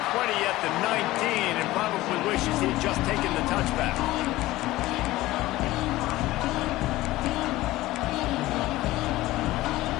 20 at the 19 and probably wishes he'd just taken the touchback.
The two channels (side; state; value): right; quieter; 17.4 dB